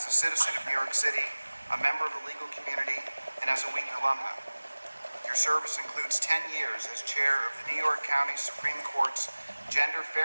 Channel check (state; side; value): inverted; both; correlation -1.00